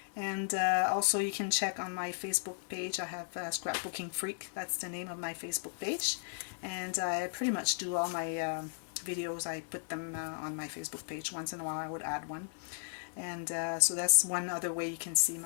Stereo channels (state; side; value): silent; right; digital silence